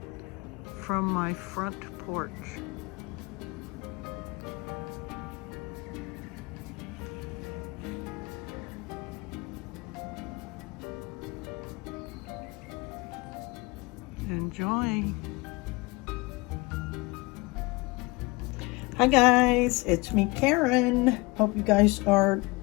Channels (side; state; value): right; quieter; 24.6 dB